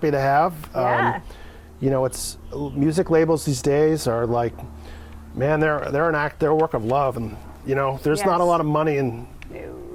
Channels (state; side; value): identical; both; correlation 1.00